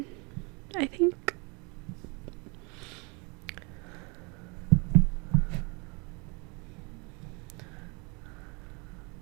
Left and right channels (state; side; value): quieter; left; 31.2 dB